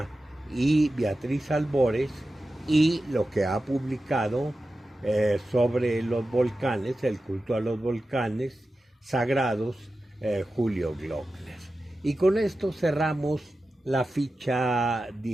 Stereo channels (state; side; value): normal; both; correlation 0.93